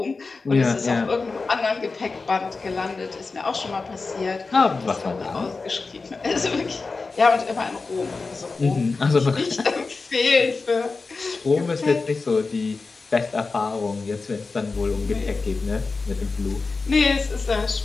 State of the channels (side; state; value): right; quieter; 4.1 dB